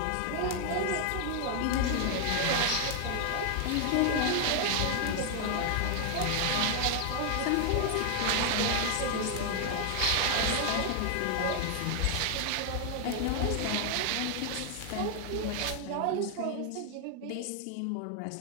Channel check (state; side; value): different; both; correlation 0.00